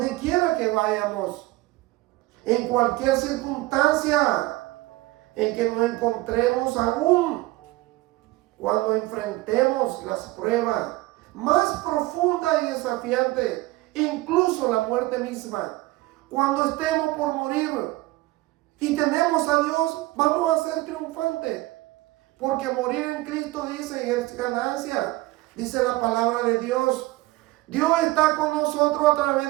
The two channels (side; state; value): left; quieter; 19.4 dB